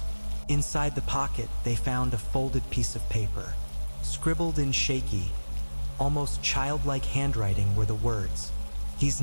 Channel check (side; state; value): both; inverted; correlation -1.00